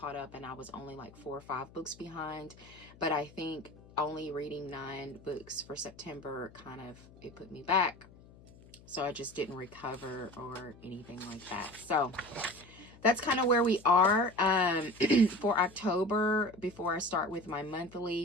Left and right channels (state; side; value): noise; left; hum, 22 dB below the sound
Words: up and I was only like 4 or 5 books behind. But I think only reading 9 books for September it put me back. So I just didn't recover or anything like that. So that's kind of where we are. For October, before I start with my